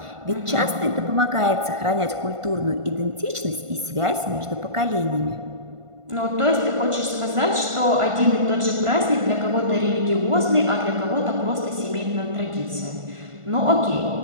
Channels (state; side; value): late; left; 1.5 ms